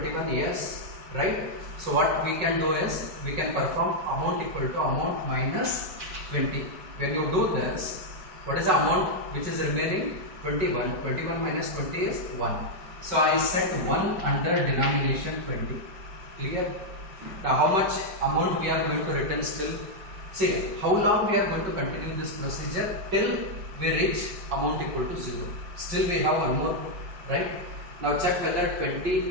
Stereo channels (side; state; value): left; late; 5.3 ms